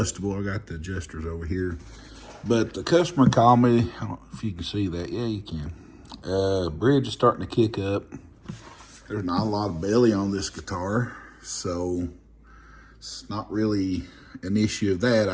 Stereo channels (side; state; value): both; identical; correlation 1.00